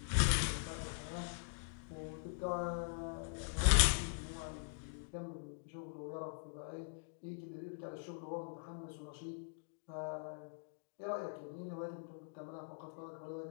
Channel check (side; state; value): right; silent; digital silence